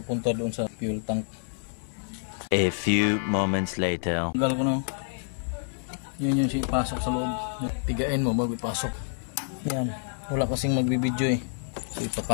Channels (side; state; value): right; silent; 59 dB below the other